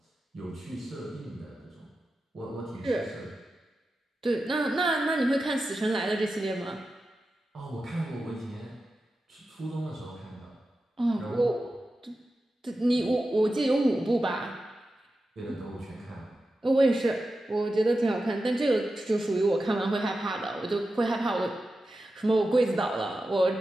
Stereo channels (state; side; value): normal; both; correlation 0.92